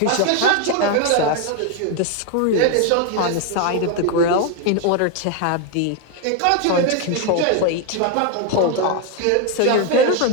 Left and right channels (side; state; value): both; different; correlation 0.01